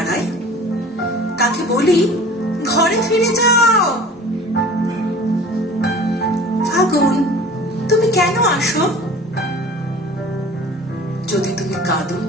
তাকে বলি ঘরে ফিরে যাও। ফাগুন, তুমি কেন আসো? যদি তুমি কাঁদো,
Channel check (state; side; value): normal; both; correlation 0.43